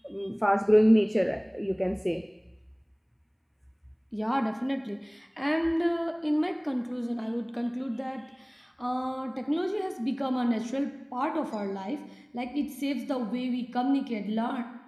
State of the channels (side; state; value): both; identical; correlation 1.00